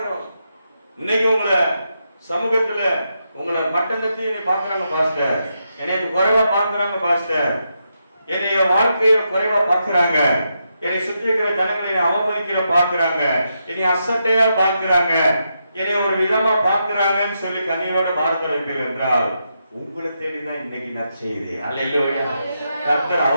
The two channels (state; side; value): inverted; both; correlation -0.84